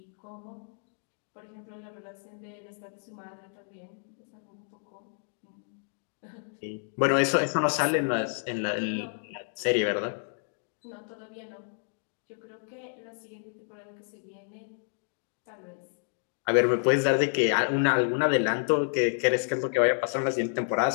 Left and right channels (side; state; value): right; silent; digital silence